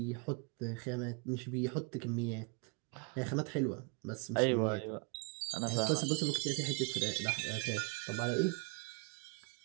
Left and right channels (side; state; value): left; quieter; 33.1 dB